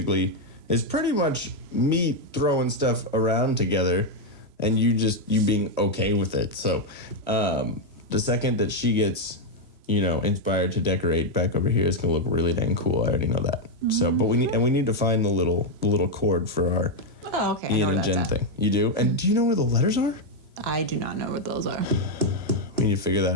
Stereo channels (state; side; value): late; left; 3.0 ms